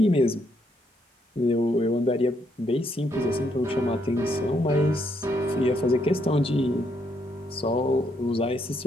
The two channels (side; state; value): both; normal; correlation 0.75